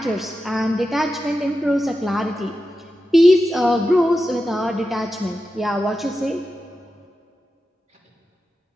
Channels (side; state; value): both; normal; correlation 0.91